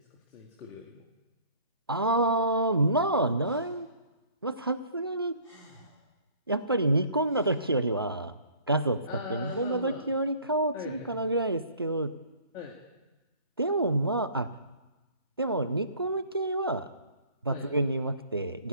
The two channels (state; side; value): inverted; both; correlation -0.53